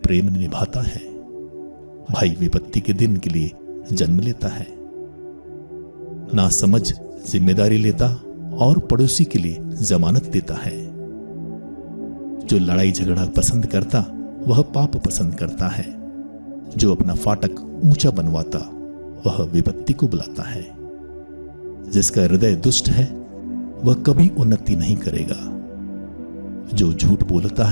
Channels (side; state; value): both; inverted; correlation -1.00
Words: प्रेम निभाता है। भाई विपत्ति के दिन के लिए जन्म लेता है। ना समझ जिम्मेदारी लेता और पड़ोसी के लिए जमानत देता है। जो लड़ाई झगड़ा पसंद करता वह पाप पसंद करता है। जो अपना फाटक ऊंचा बनवाता वह विपत्ति को बुलाता है। जिसका हृदय दुष्ट है वह कभी उन्नति नहीं करेगा। जो झूठ बोलता